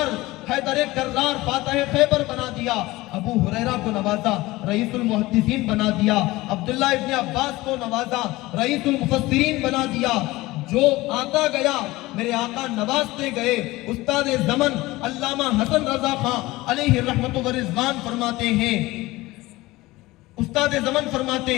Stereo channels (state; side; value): quieter; right; 19.5 dB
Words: کرار فاتح خیبر بنا دیا، ابو ہریرہ کو نوازا رئیس المحدثین بنا دیا، عبداللہ ابن عباس کو نوازا رئیس المفسرین بنا دیا۔ جو آتا گیا میرے آقا نوازتے گئے۔ استاد زمن علامہ حسن رضا خان علیہ رحمت و رضوان فرماتے ہیں، استاد زمن فرماتے